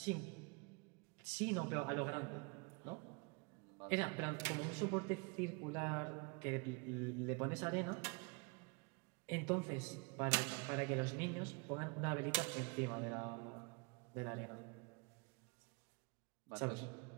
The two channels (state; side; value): quieter; left; 32.2 dB